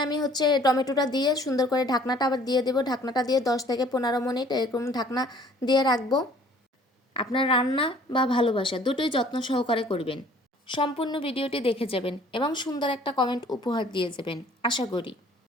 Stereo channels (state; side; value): normal; both; correlation 0.55